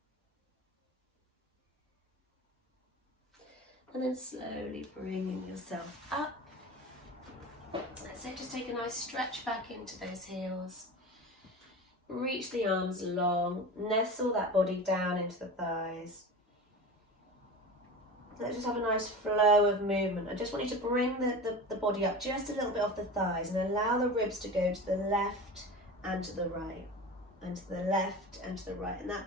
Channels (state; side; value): normal; both; correlation 0.31